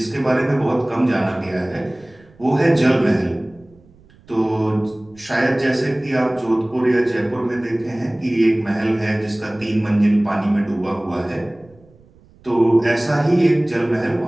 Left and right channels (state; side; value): noise; right; rumble, 28 dB below the sound